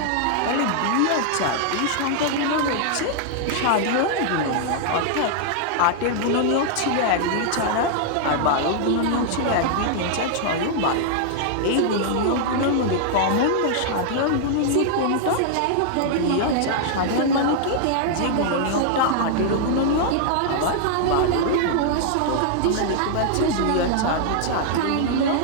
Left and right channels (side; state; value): both; different; correlation -0.01